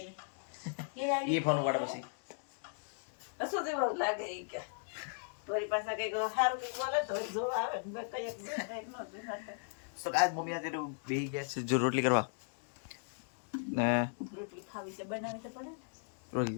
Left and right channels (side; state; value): right; silent; digital silence